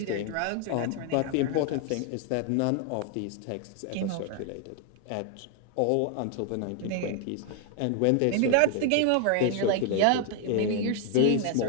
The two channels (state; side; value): different; both; correlation 0.00